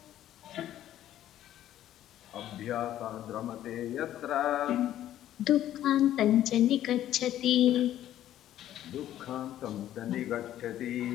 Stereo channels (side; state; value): right; quieter; 12.3 dB